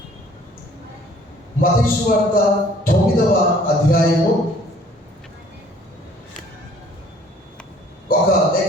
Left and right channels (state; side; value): normal; both; correlation 0.56